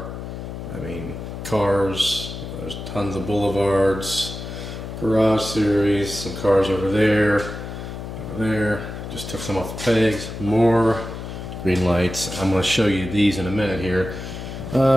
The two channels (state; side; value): noise; left; hum, 8 dB below the sound